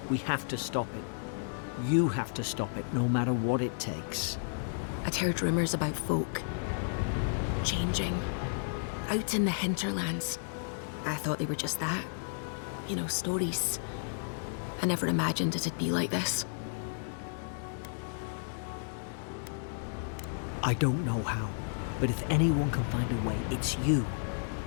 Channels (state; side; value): silent; right; digital silence